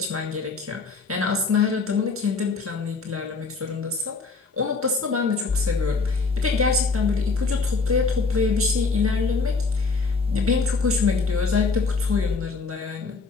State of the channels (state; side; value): quieter; right; 4.2 dB